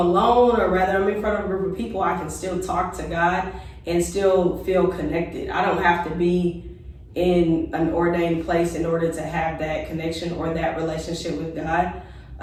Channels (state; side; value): identical; both; correlation 1.00